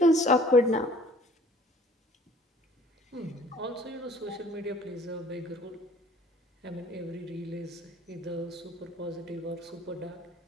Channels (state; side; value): normal; both; correlation 0.53